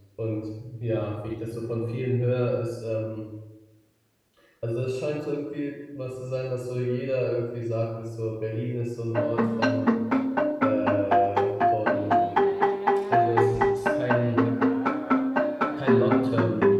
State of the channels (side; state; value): both; identical; correlation 1.00